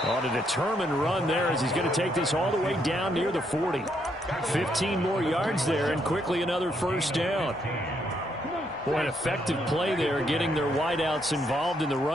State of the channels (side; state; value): both; normal; correlation 0.74